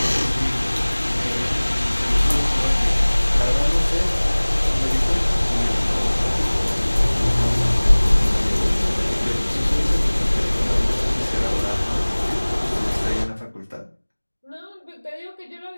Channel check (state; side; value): inverted; both; correlation -1.00